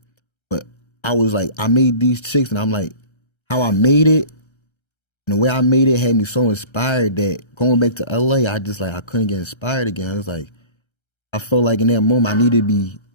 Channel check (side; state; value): right; late; 1.3 ms